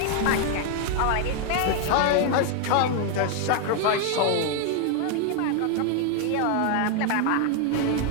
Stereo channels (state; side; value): different; both; correlation 0.01